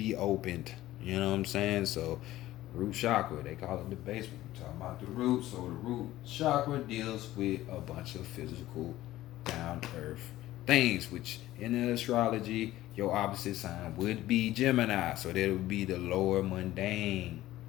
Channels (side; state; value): right; quieter; 15.4 dB